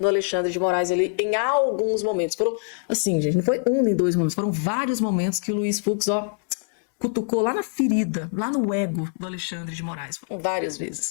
Alexandre de Moraes ali em alguns momentos. Foram, assim, gente, não foi um nem dois momentos, foram vários momentos que o Luiz Fux, ó, cutucou lá na ferida, lá no ego do Alexandre de Moraes. Foram várias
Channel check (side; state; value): right; silent; 63 dB below the other